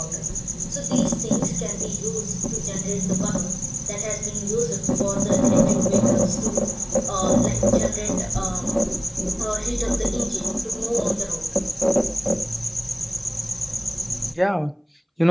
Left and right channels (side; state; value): both; identical; correlation 1.00